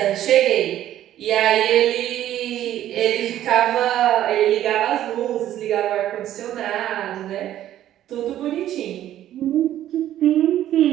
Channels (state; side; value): quieter; left; 12.3 dB